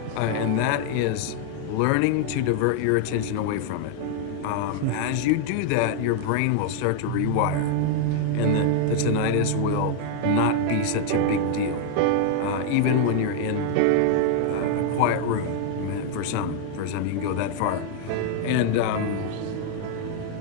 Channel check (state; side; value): different; both; correlation 0.00